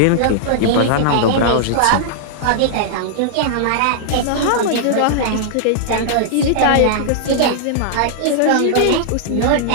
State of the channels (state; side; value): different; both; correlation -0.01